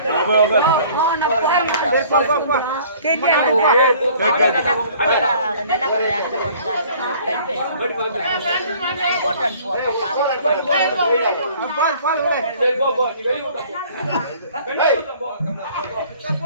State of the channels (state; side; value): inverted; both; correlation -0.53